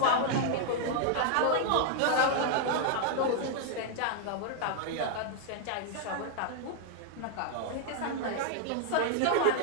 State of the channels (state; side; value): different; both; correlation 0.00